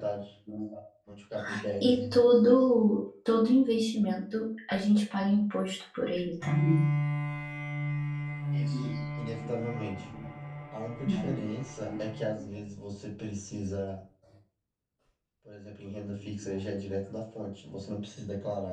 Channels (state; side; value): identical; both; correlation 1.00